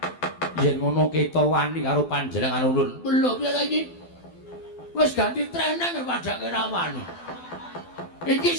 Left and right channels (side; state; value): right; late; 12 ms